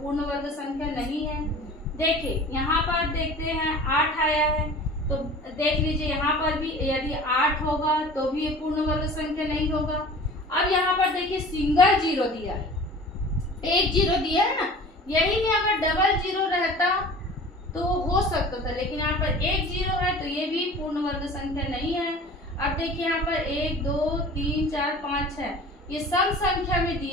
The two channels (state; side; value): normal; both; correlation 0.41